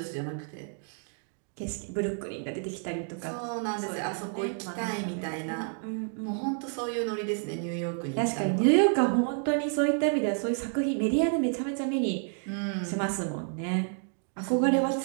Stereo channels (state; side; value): silent; left; 55 dB below the other